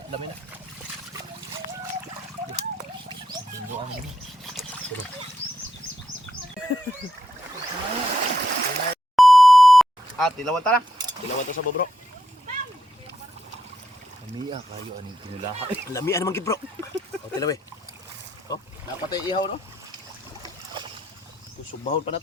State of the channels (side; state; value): both; normal; correlation 0.81